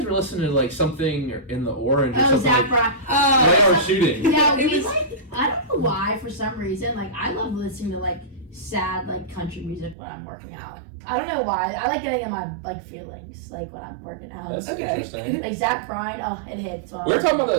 were listening to like something in the Orange or something. Zach Bryan. Right, or shooting. Yeah, I don't know why, for some reason, like I love listening to like sad like country music when I'm working out. I don't know why. I like getting in my like feelings like when I'm working out. That's interesting. Like Zach Bryan, it hits. We were talking about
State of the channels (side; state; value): left; drops out; at 10.0 s